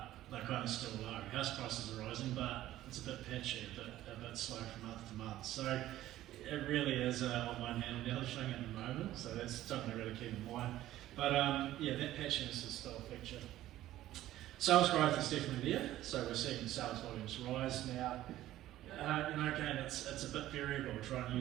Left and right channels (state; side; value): quieter; left; 14.2 dB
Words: they're kind of still low. House prices are rising, but it's a bit patchy, a bit slow from month to month. So it really is on one hand and the other thing at the moment. So that's something to really keep in mind. But that patchiness is still a feature. Sales growth is definitely there, so we're seeing sales volumes rise now. Again, it's a bit variable. Try